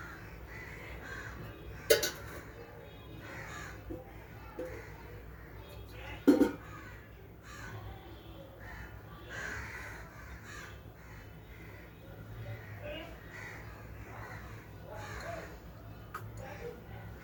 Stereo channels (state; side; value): identical; both; correlation 1.00